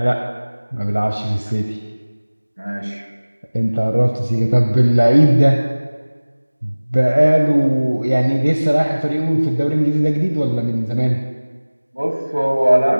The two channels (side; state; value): both; inverted; correlation -1.00